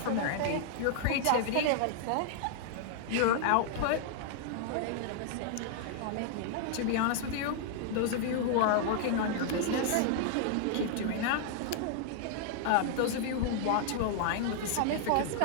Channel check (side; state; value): both; different; correlation -0.01